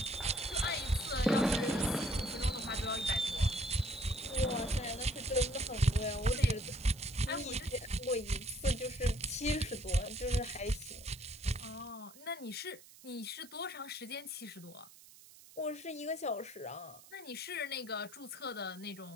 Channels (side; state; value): right; noise; hiss, 21 dB below the sound